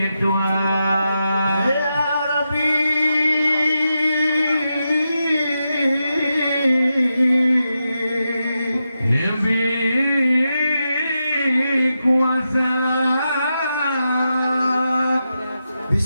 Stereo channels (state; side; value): inverted; both; correlation -0.88